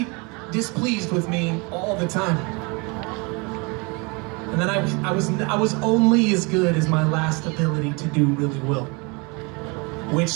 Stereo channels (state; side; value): quieter; left; 29.6 dB